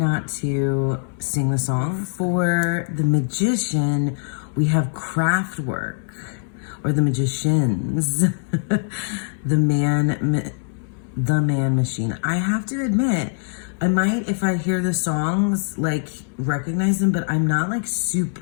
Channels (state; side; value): silent; right; 64 dB below the other